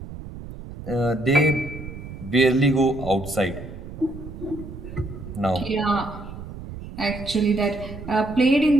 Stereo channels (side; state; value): right; noise; rumble, 12 dB below the sound